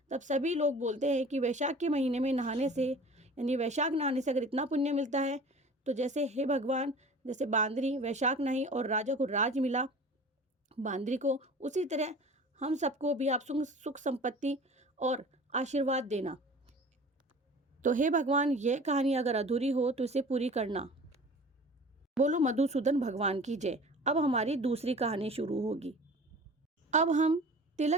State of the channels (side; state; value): both; normal; correlation 0.42